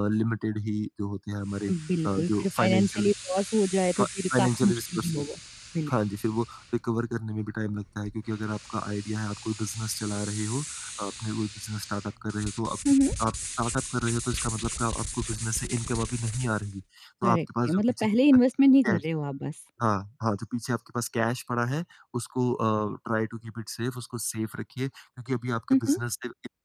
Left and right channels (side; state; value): both; identical; correlation 1.00